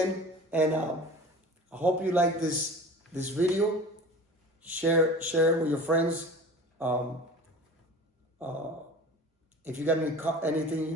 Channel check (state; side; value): normal; both; correlation 0.38